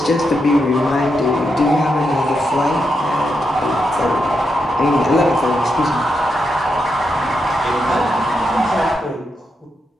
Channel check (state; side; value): normal; both; correlation 0.84